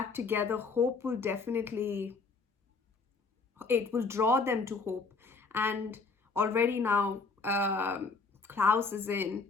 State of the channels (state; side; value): quieter; right; 4.3 dB